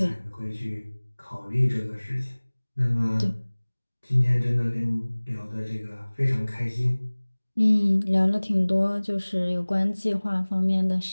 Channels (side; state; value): both; inverted; correlation -1.00